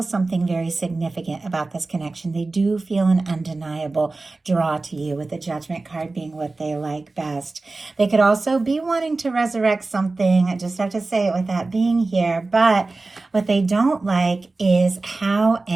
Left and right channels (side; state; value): left; quieter; 3.4 dB